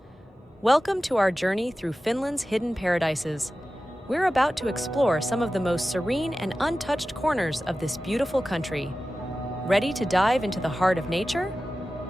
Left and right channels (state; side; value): normal; both; correlation 0.95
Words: Welcome to our journey through Finland's hidden paradises. We're about to explore some of the most serene and untouched corners of this beautiful country. Ready to dive into the heart of nature?